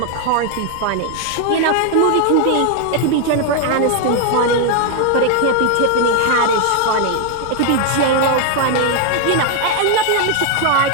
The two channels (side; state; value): both; different; correlation 0.00